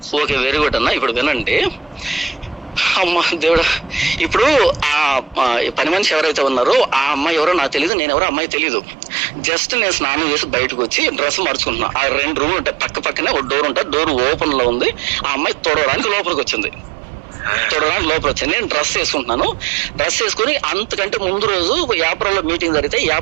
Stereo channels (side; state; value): left; drops out; at 7.9 s